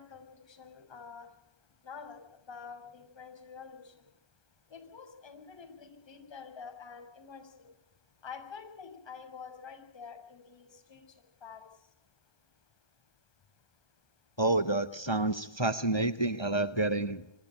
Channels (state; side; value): late; right; 1.3 ms